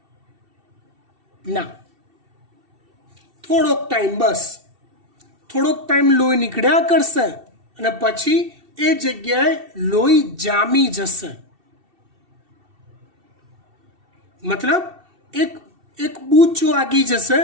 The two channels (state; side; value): late; left; 2.7 ms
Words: ના. થોડોક ટાઈમ, બસ થોડોક ટાઈમ લોહી નીકળ્યા કરશે અને પછી એ જગ્યાએ લોહી જામી જશે. મતલબ એક બૂચ વાગી જશે